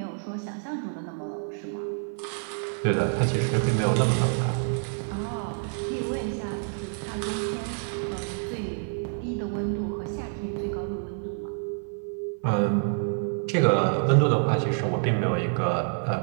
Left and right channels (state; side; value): silent; left; 60 dB below the other